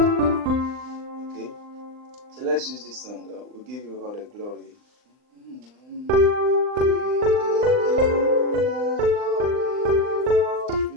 so let's use this song. We'll give you all the glory.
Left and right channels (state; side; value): late; left; 39 ms